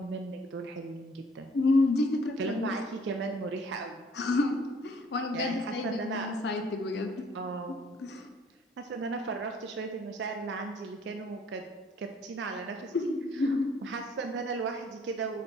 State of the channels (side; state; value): both; normal; correlation 0.59